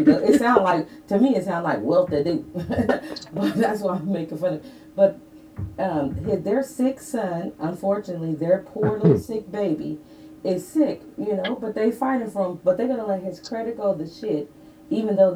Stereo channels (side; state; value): both; identical; correlation 1.00